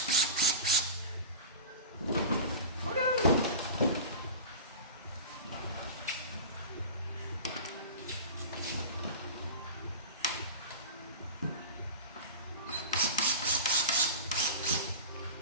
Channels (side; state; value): both; inverted; correlation -0.32